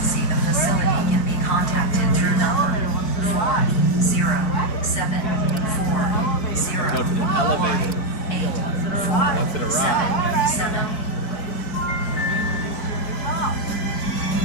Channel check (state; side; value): late; right; 4.6 ms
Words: the facility can be contacted through number 40740. Go to the elevator. 8 Once it arrives. 7.